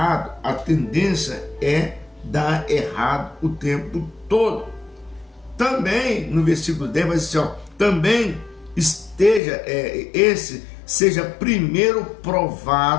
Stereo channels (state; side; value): drops out; right; at 9.4 s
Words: a tendência é dar errado o tempo todo. Também, no versículo 10, vai dizer assim, também seja primeiro